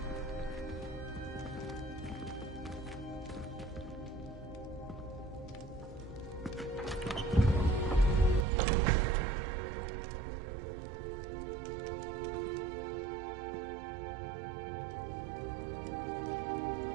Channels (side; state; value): left; drops out; at 8.5 s